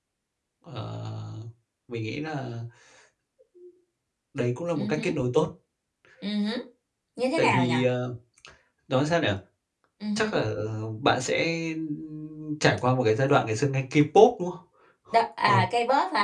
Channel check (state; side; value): identical; both; correlation 1.00